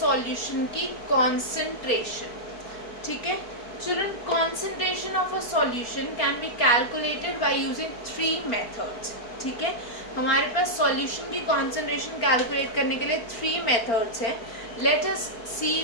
की कॉन्सेंट्रेशन, ठीक है. Children, concentration of a solution can be calculated by using 3 methods, ठीक है. हमारे पास सॉल्यूशन की कॉन्सेंट्रेशन कैलकुलेट करने के लिए 3 मेथड्स हैं. Let us see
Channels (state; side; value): late; right; 4.3 ms